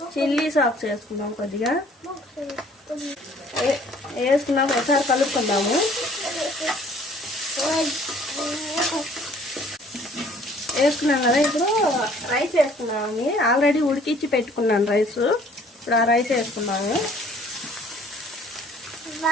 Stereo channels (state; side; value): normal; both; correlation 0.56